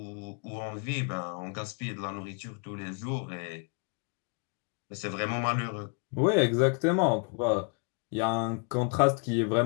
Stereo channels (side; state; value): right; quieter; 37.9 dB